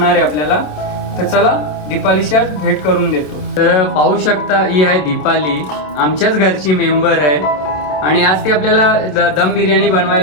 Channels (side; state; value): right; late; 27 ms